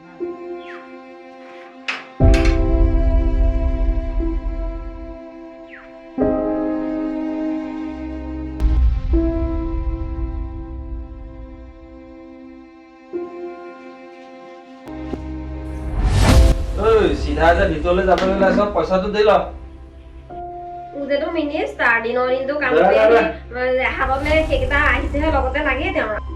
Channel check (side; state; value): both; identical; correlation 1.00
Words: চিধা যে ভিতৰলৈ যাবলৈ ওলাইছ পইচাটো দি ল উজেটো মিনিষ্টাৰ দিনৰ দিনটো কাম কৰি হাতত সেইকেইটা আহিছেহে লগতে লাগেই তেওঁৰ